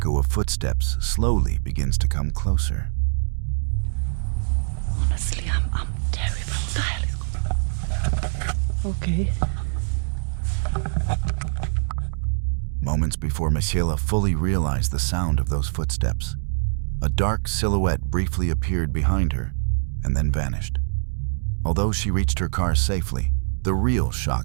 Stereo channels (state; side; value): silent; left; digital silence